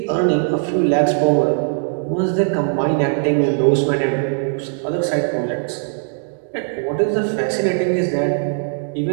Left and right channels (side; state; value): left; silent; 60 dB below the other